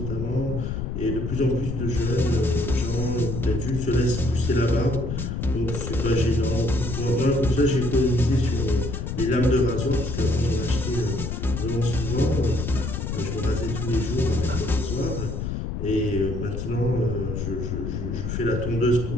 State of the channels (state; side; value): noise; left; rumble, 4 dB below the sound